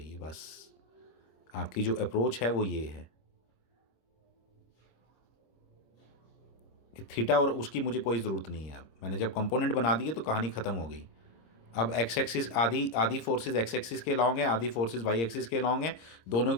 बस आपकी जो अप्रोच है वो ये है कि थीटा और उसकी मुझे कोई ज़रूरत नहीं है। अब मैंने जब कंपोनेंट बना दिए तो कहानी ख़त्म हो गई। अब एक्स एक्सिस आधी आधी फोर्सेज एक्स एक्सिस के लॉन्ग हैं, आधी फोर्सेज वाई एक्सिस के लॉन्ग हैं। दोनों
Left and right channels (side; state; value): right; late; 26 ms